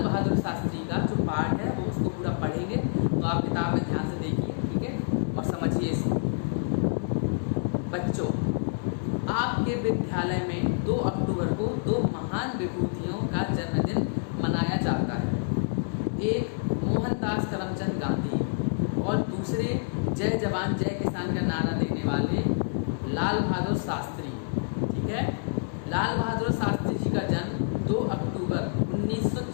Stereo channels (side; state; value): right; silent; 60 dB below the other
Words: बहादुर शास्त्री का जो पार्ट है वो उसको पूरा पढ़ेंगे। तो आप किताब में ध्यान से देखिए, ठीक है, और समझिए इसको। बच्चों, आपके विद्यालय में 2 अक्टूबर को 2 महान विभूतियों का जन्मदिन मनाया जाता है। एक मोहनदास करमचंद गांधी और दूसरे जय जवान जय किसान का नारा देने वाले लाल बहादुर शास्त्री। ठीक है, लाल बहादुर शास्त्री जी का जन्म 2 अक्टूबर